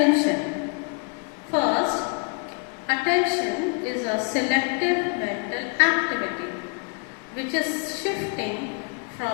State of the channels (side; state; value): right; quieter; 37.7 dB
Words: First, attention is a selective mental activity which is shifting